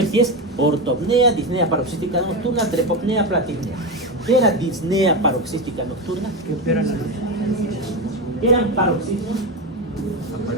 si es ortopnea, disnea paroxística nocturna, trepopnea, platipnea. ¿Qué era disnea paroxística nocturna? ¿Qué eran paroxismos?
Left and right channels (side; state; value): both; normal; correlation 0.15